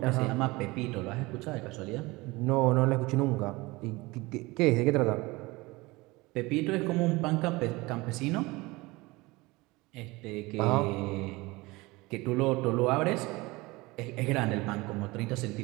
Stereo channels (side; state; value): left; quieter; 22.3 dB